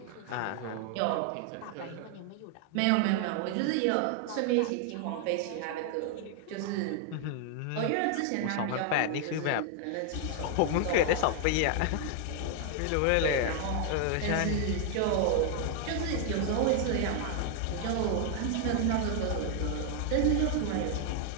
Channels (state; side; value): different; both; correlation 0.00